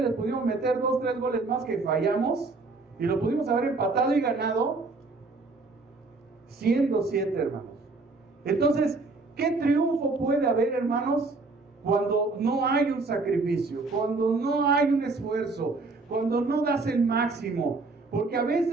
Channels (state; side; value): quieter; left; 3.7 dB